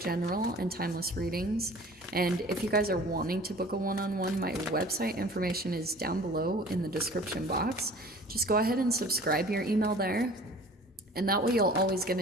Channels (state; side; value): normal; both; correlation 0.46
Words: and timeless readings. And if you guys are wanting to book a one-on-one, my website information is down below in the description box. Just go ahead and subscribe your email there. And that way you'll always get